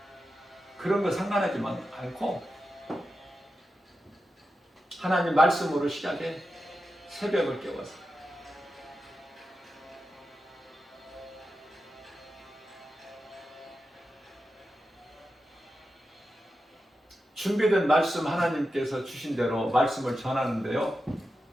그런 거 상관하지 않고 하나님 말씀으로 시작해. 새벽을 깨워서 준비된 말씀 하나님께서 주신 대로 말씀을 전하는데요.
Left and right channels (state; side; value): normal; both; correlation 0.90